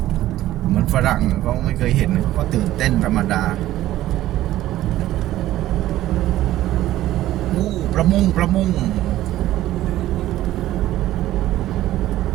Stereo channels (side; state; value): left; quieter; 14.5 dB